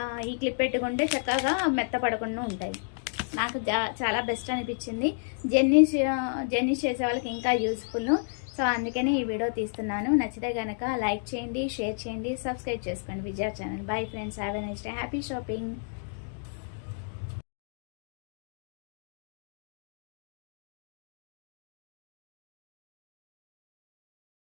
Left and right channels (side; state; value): right; silent; digital silence